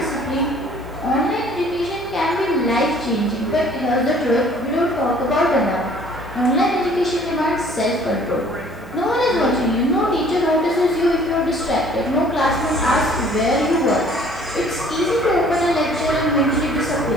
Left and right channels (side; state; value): both; normal; correlation 0.55